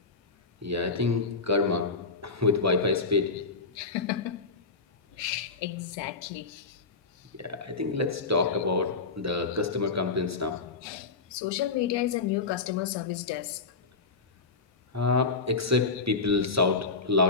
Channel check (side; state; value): right; quieter; 4.4 dB